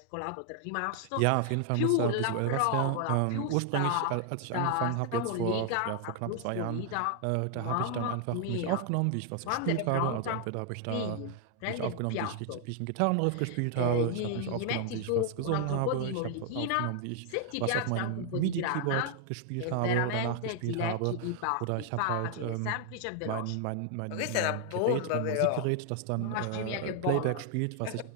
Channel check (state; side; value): different; both; correlation 0.00